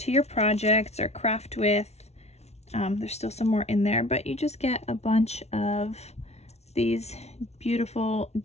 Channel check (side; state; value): right; late; 0.31 ms